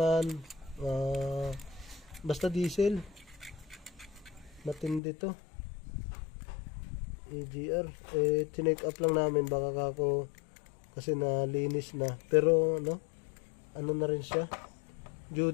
basta diesel. Matindi to. EGR. Tinake up lang namin baka ako kasi nalinis na. Pero ano na rin siya.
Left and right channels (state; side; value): drops out; right; at 5.0 s